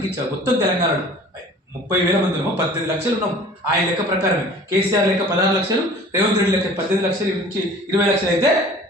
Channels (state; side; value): normal; both; correlation 0.46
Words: ఇచ్చావు మొత్తం తెలంగాణలో. 30,000 మంది ఉన్నాము, 18 లక్షలు ఉన్నాం. ఆయన లెక్క ప్రకారమే కేసీఆర్ లెక్క 16 లక్షలు, రేవంత్ రెడ్డి లెక్క 18 లక్షలు నుంచి 20 లక్షలు అయితే